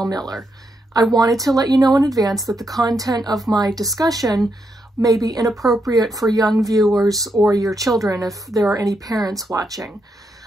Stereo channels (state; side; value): normal; both; correlation 0.81